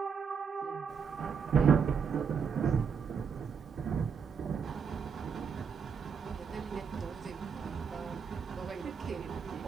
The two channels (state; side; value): quieter; left; 6.4 dB